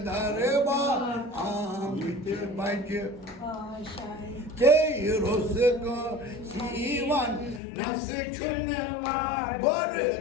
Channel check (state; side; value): drops out; right; at 7.6 s